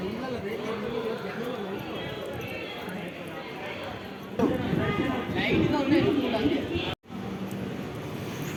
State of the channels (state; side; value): identical; both; correlation 1.00